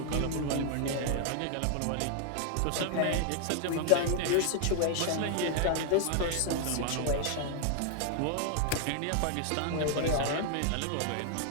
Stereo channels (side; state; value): both; different; correlation 0.00